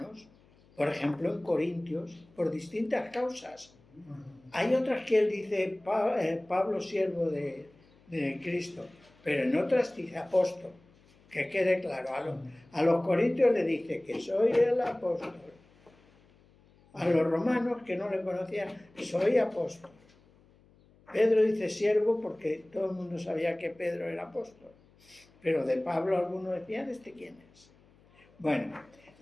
Por ejemplo, en Corintios. Por distintas causas. Hay otras que él dice Pablo, siervo de Cristo, pero en otras dice apóstol, que quede claro. A los corintios le dice que soy el apóstol. A los romanos, que no le conocían, soy apóstol. Pedro dice siervo porque todo el mundo sabía que Pedro era apóstol, pero de Pablo algunos decían, ¿este quién es? Bueno,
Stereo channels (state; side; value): noise; left; hum, 29 dB below the sound